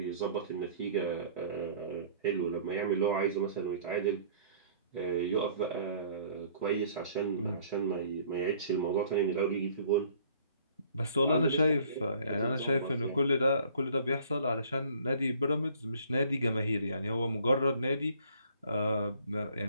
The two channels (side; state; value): both; inverted; correlation -0.55